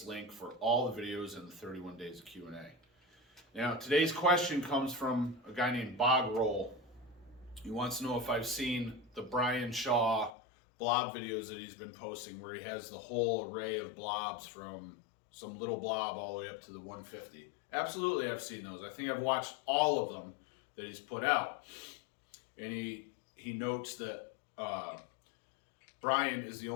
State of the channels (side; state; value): right; drops out; at 10.3 s